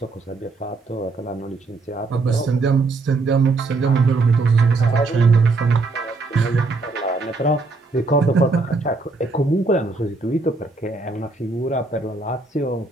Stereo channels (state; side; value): quieter; left; 3.6 dB